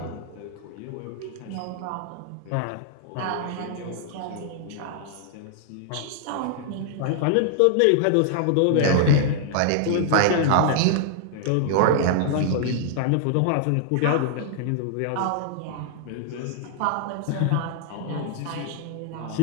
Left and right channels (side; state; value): both; different; correlation 0.00